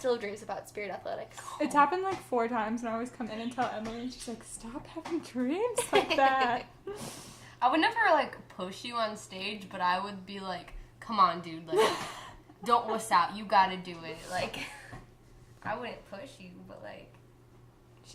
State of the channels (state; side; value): identical; both; correlation 1.00